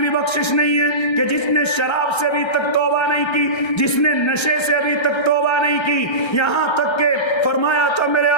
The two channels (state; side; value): late; right; 1.3 ms